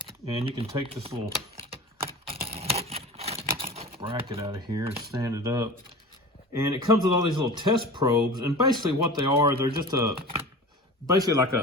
And you can take this little bracket out of here and stand it up. And it comes with all these little test probes. And basically what they are, they're just basically like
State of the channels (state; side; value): normal; both; correlation 0.36